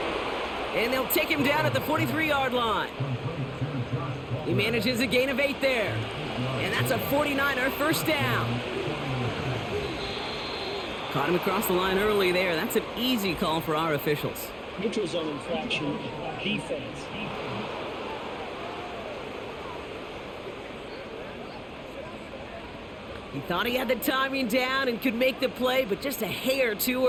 And they'll take him down at the 43-yard line. He manages a gain of 8 there. And that's a 49er first down. Caught him across the line early there. That's an easy call for our officials. Neutral zone infraction, defense. He thought he had the timing down and could make the play, but just a hair too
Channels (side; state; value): both; identical; correlation 1.00